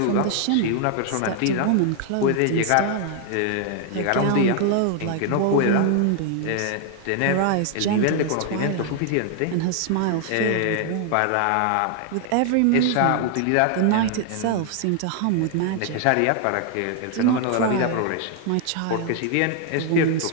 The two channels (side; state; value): both; different; correlation 0.00